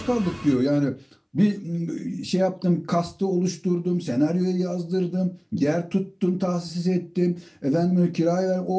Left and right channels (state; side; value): identical; both; correlation 1.00